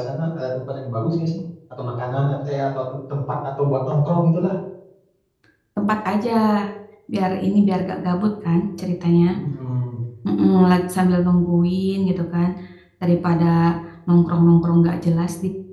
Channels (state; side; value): identical; both; correlation 1.00